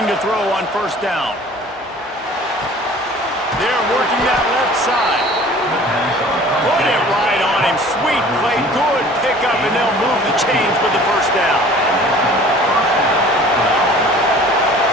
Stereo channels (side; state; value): both; normal; correlation 0.47